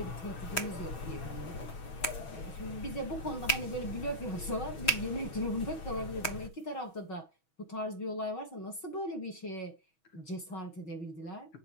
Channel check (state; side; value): late; right; 6.2 ms